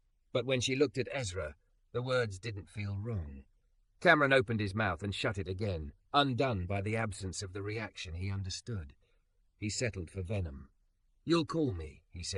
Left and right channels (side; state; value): both; identical; correlation 1.00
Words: But when she looked at Ezra, the words didn't feel wrong. Cameron opened his mouth and shut it again, undone by the absence of the reaction he understood. He settled for venom. You'll call me, he